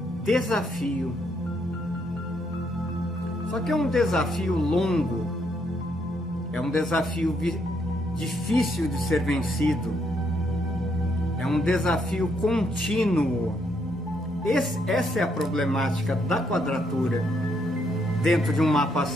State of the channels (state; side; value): normal; both; correlation 0.74